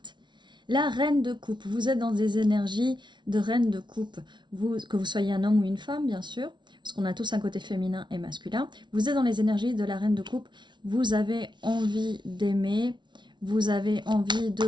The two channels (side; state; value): left; late; 0.22 ms